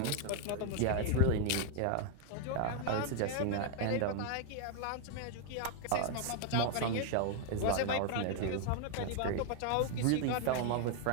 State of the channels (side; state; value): both; different; correlation 0.00